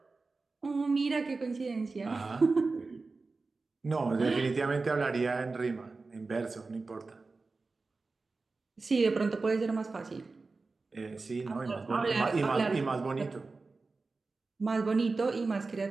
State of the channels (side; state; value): left; quieter; 3.9 dB